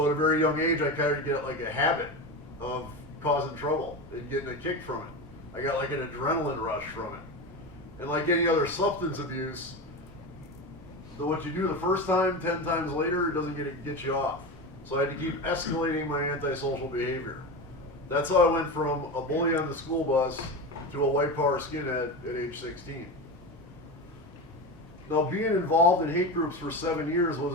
at a very young age, I kind of get like a habit of causing trouble and getting a kick from it. I got like an adrenaline rush from it. And like any other substance abuse, what you do the first time, 10 times later, it doesn't get you off. So I had to keep escalating my antisocial behavior. That's how I went from a bully on the school bus to a white power skinhead at age 16. Now, being involved in hate groups for 7 years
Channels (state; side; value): normal; both; correlation 0.22